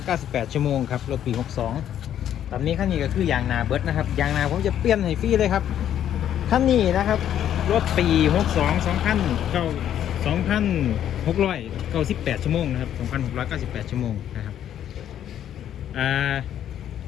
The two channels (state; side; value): quieter; right; 10.5 dB